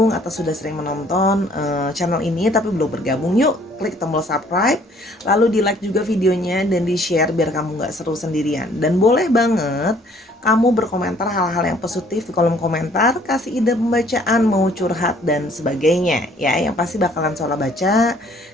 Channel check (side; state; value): both; normal; correlation 0.59